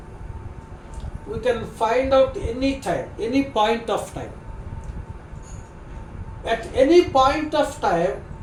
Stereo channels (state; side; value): identical; both; correlation 1.00